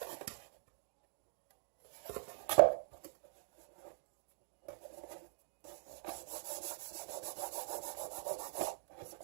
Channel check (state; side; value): silent; left; digital silence